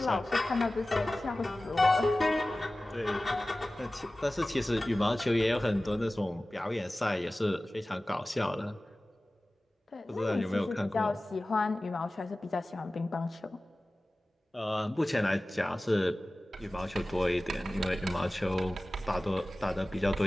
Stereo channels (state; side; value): normal; both; correlation 0.97